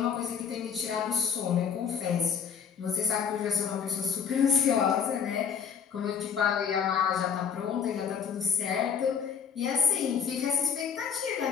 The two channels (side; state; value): right; quieter; 7.1 dB